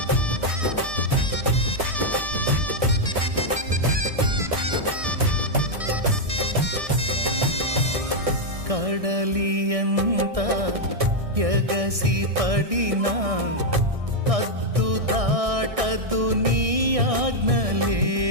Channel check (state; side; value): late; left; 1.6 ms